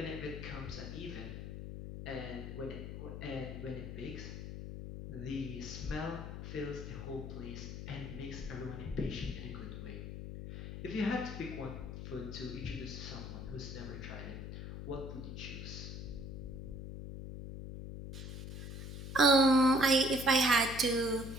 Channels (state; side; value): noise; left; hum, 8 dB below the sound